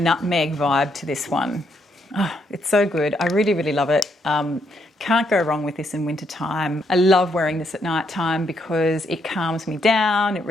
vibe to this one. Oh, it's so good. I really, really love it. Can't go wrong with this in winter time. I love wearing this at night time because it calms me down, it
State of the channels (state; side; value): normal; both; correlation 0.76